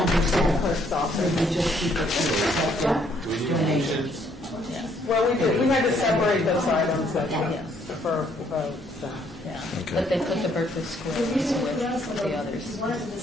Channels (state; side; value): normal; both; correlation 0.68